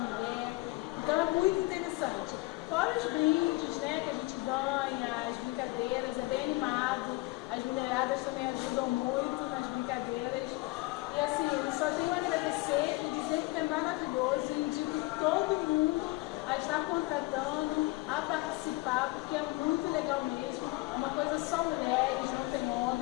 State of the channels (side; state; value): right; quieter; 22.2 dB